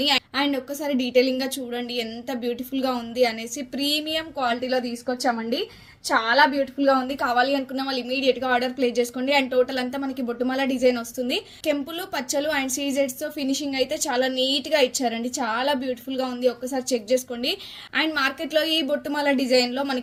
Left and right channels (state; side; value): identical; both; correlation 1.00